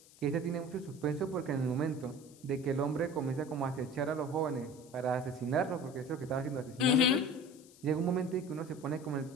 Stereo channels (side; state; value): left; noise; hiss, 23 dB below the sound